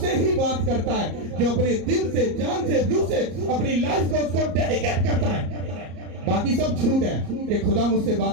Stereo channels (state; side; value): late; left; 34 ms